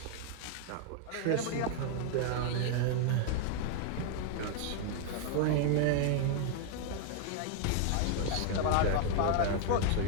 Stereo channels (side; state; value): both; different; correlation 0.00